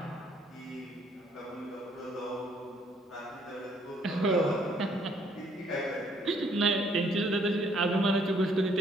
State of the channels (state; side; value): normal; both; correlation 0.66